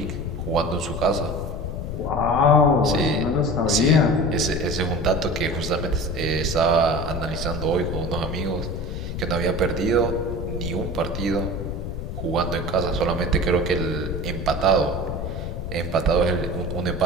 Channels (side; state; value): left; noise; rumble, 5 dB below the sound